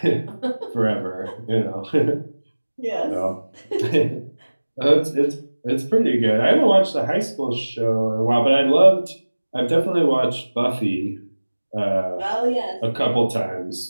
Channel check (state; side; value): inverted; both; correlation -1.00